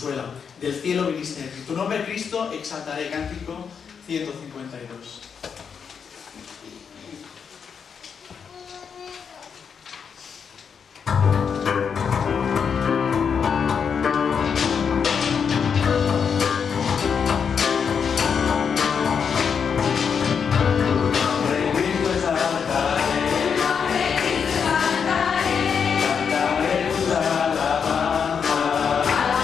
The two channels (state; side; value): quieter; right; 6.7 dB